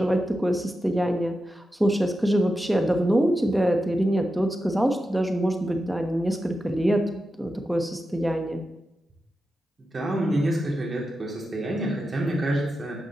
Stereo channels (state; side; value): normal; both; correlation 0.90